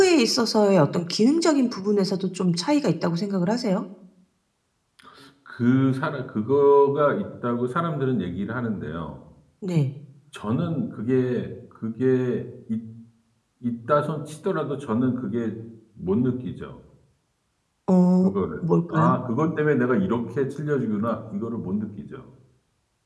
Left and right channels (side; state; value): both; identical; correlation 1.00